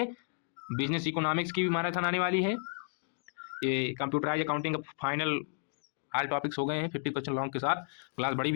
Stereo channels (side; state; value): right; silent; 56 dB below the other